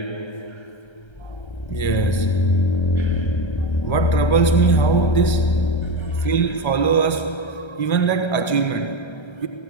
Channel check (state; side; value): late; right; 1.3 ms